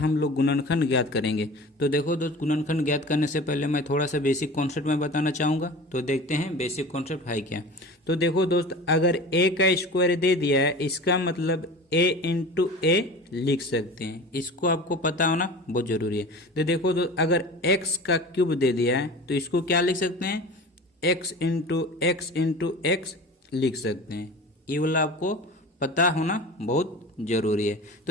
लोग गुणनखंड ज्ञात करेंगे। तो देखो दोस्त, गुणनखंड ज्ञात करने से पहले मैं थोड़ा सा बेसिक कॉन्सेप्ट में बताना चाहूँगा। तो देखते हैं बेसिक कॉन्सेप्ट है क्या। तो देखो दोस्त, अगर ए का स्क्वायर दे दिया है, इसका मतलब ए इंटू ए लिख सकते हैं। इसको आपको पता होना बहुत जरूरी है। तो देखो दोस्त, अगर एक्स का क्यूब दे दिया है तो इसको क्या लिख सकते हैं, एक्स इंटू एक्स लिख सकते हैं। ये वाला आपको पता होना बहुत जरूरी है।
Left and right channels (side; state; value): both; normal; correlation 0.37